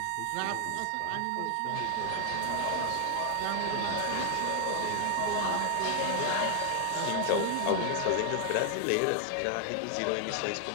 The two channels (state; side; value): different; both; correlation 0.00